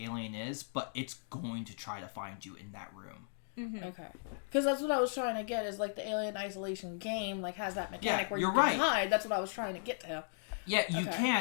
alien is, but it's going to try to find you in that room. Mm-hmm. Okay. Because that's what I was trying to get, is like the Alien Isolation game like has that mechanic where you can right. hide. That's what I was trying to get to. Yeah, you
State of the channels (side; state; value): right; silent; digital silence